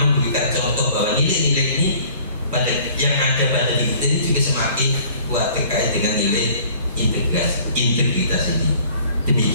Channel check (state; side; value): inverted; both; correlation -0.53